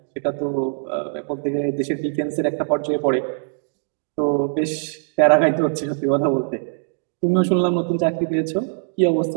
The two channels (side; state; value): left; silent; digital silence